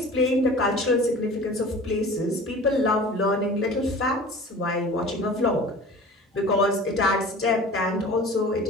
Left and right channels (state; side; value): normal; both; correlation 0.41